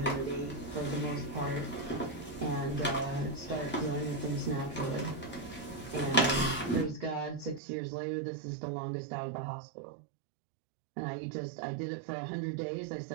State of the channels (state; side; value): drops out; left; at 7.6 s